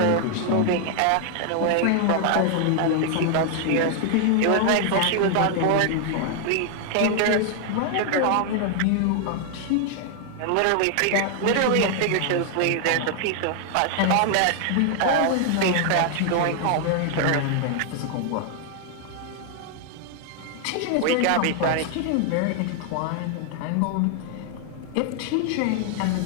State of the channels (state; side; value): different; both; correlation 0.00